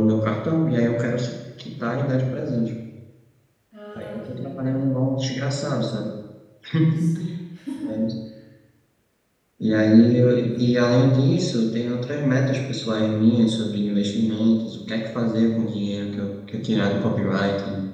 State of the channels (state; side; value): identical; both; correlation 1.00